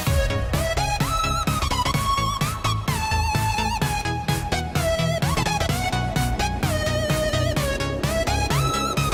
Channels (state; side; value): identical; both; correlation 1.00